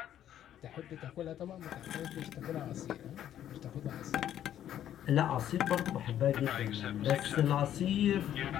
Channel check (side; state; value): right; quieter; 11.0 dB